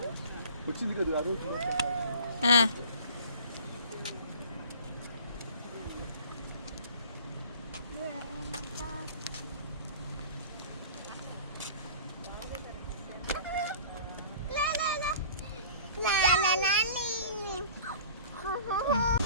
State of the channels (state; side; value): inverted; both; correlation -0.45